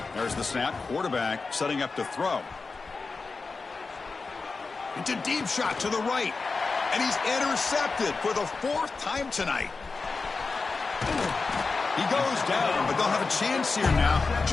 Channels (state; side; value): quieter; right; 4.2 dB